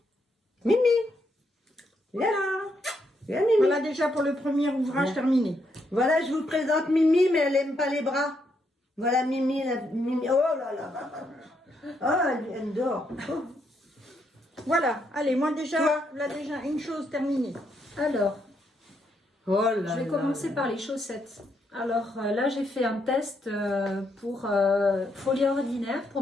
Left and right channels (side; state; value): both; normal; correlation 0.77